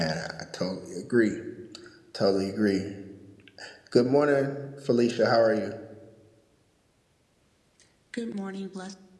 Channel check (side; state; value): both; identical; correlation 1.00